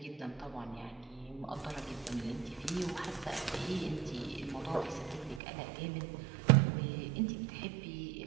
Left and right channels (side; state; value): left; drops out; at 5.4 s